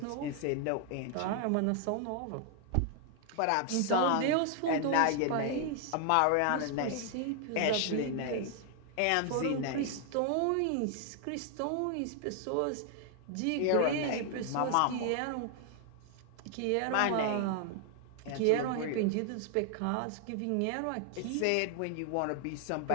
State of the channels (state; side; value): different; both; correlation 0.00